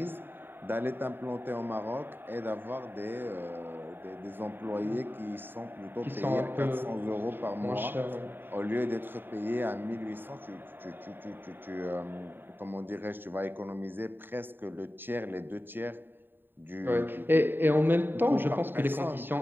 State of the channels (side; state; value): left; late; 0.096 ms